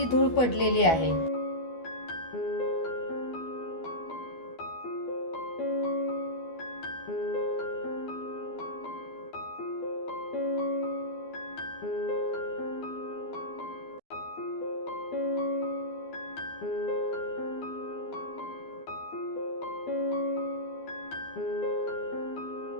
धूळ पडलेली आहे।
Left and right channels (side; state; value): right; late; 12 ms